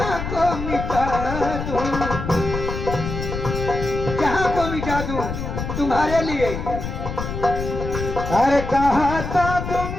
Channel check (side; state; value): left; noise; rumble, 5 dB below the sound